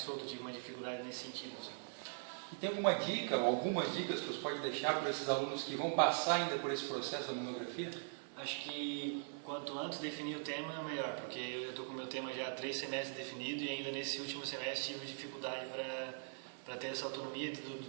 solto. Eu tive uma dificuldade nesse sentido. Assim. E tem alguma dica ou algumas dicas que você pode deixar para esses alunos que vão passar ainda por esse processo da monografia? Acho que quanto antes definir o tema, melhor, porque eu estou com o meu tema já há 3 semestres definido e ainda nesse último semestre tive dificuldade para ter essa autonomia do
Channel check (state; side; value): silent; left; 50 dB below the other